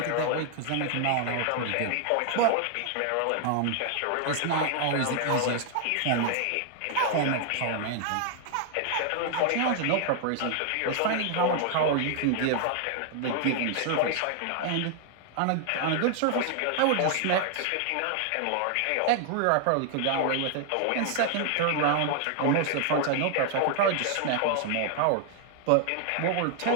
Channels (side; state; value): both; different; correlation 0.00